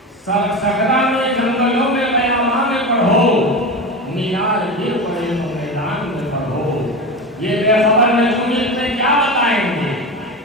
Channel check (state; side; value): normal; both; correlation 0.24